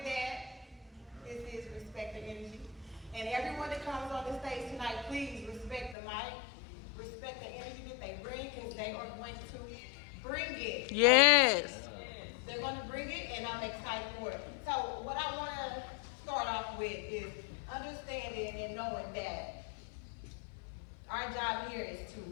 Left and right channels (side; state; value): right; drops out; at 6.0 s